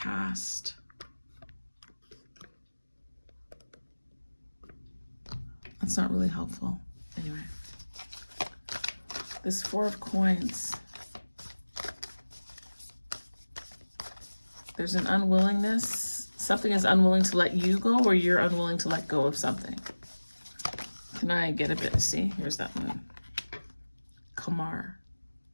That's not really helpful. Anyway, this Four of Coins. There's an unwillingness. Something is unwilling to let you go, or you're unwilling to let go of something. Can I get a bit? See, here's that moon. Kamar.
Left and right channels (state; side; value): inverted; both; correlation -1.00